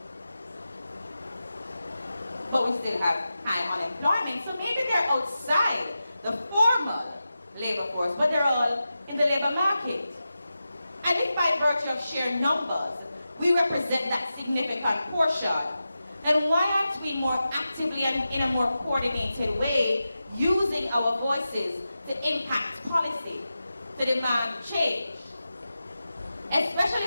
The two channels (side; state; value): both; inverted; correlation -0.92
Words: But we still have high unemployment, so maybe they're outside the formal labor force, but they're all in the labor market. And if by virtue of sheer numbers, we represent that significant portion, then why aren't we more actively and in a more coordinated way using our voices to impact policy, to demand change?